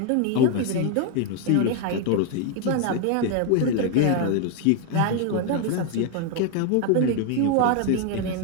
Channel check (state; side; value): different; both; correlation 0.01